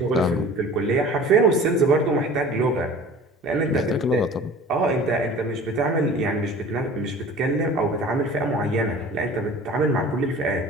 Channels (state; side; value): normal; both; correlation 0.42